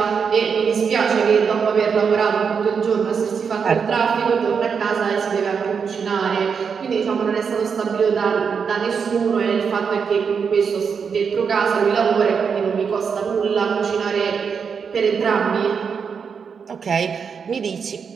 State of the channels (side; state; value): left; quieter; 6.2 dB